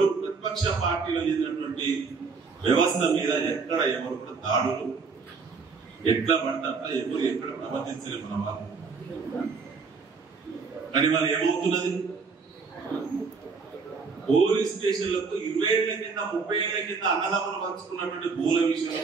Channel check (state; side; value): quieter; left; 4.9 dB